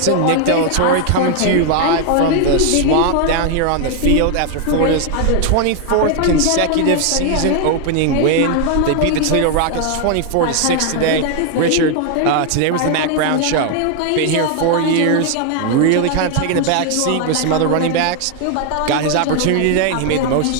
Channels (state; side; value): different; both; correlation 0.00